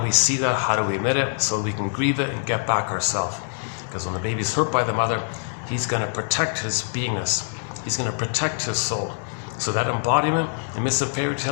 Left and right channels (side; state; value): right; silent; digital silence